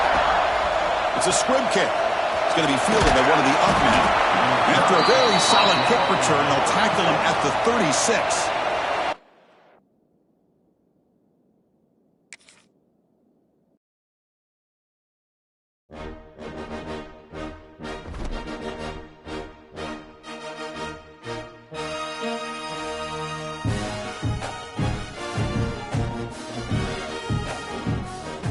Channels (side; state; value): both; identical; correlation 1.00